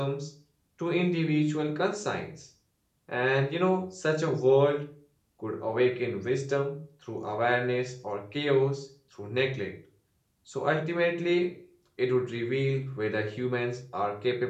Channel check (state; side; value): identical; both; correlation 1.00